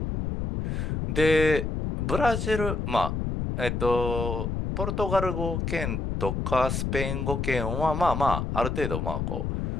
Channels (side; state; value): left; noise; rumble, 2 dB below the sound